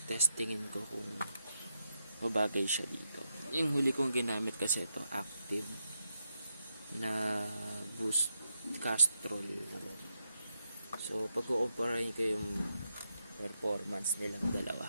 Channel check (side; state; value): both; inverted; correlation -0.84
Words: testingin ko kung mabagay siya dito. Yung huli kong ginamit kasi ito, active na boost castrol. So, pag-kukumparahin ko yung performance nilang